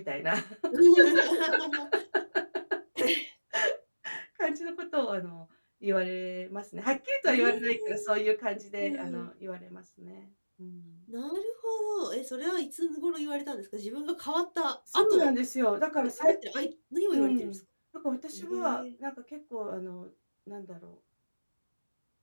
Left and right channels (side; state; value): both; inverted; correlation -1.00